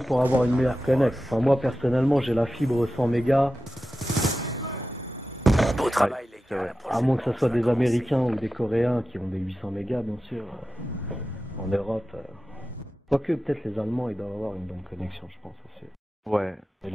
pourra avoir une meilleure connect. Enfin, moi, personnellement, j'ai la fibre 100 mégas. travail Ouais, c'est vrai. À moins que ce soit des Américains ou des Coréens qui ont des 800 mégas, bien sûr. En Europe. Quoique, peut-être les Allemands, ils doivent avoir une bonne connexion, je pense aussi. Ouais. Et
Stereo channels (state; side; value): normal; both; correlation 0.93